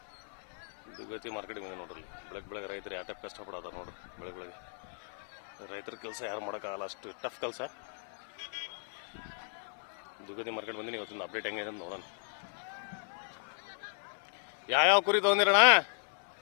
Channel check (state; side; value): silent; right; 54 dB below the other